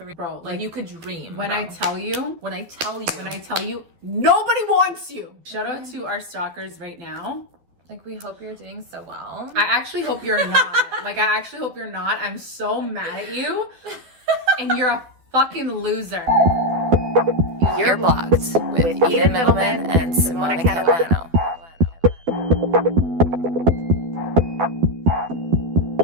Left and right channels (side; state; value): left; late; 12 ms